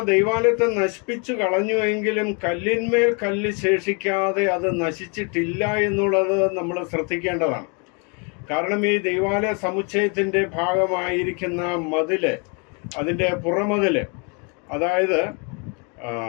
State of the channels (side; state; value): right; quieter; 34.8 dB